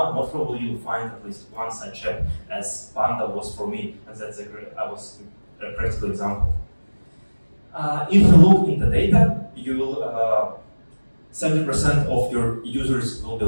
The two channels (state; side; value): inverted; both; correlation -1.00